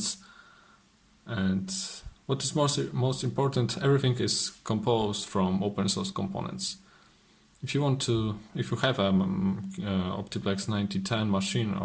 And what is most important, everything is composed from open source components. If you have a OptiPlex 9010 machine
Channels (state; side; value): identical; both; correlation 1.00